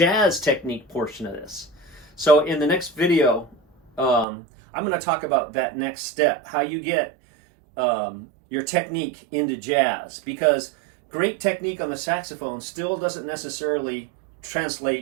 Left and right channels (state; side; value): drops out; left; at 4.2 s